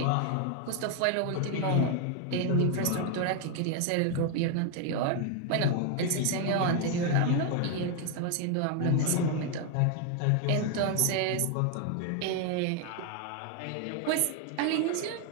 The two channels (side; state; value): both; different; correlation 0.01